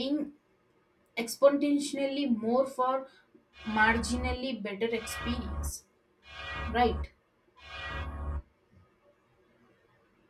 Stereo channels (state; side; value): identical; both; correlation 1.00